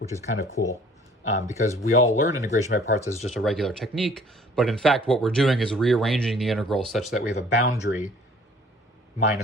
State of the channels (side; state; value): both; normal; correlation 0.55